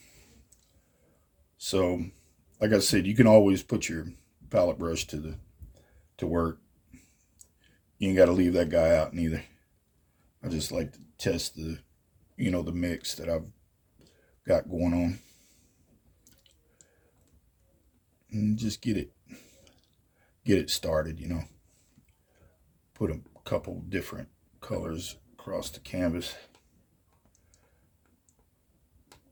So, like I said, you can always put your palette brush to work. You ain't got to leave that guy out neither. I just like to test the mix that I've got going on. And just get it started, Put a couple different colors across the canvas.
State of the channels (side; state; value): both; identical; correlation 1.00